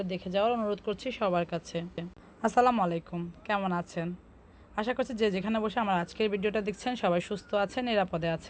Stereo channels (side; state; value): both; identical; correlation 1.00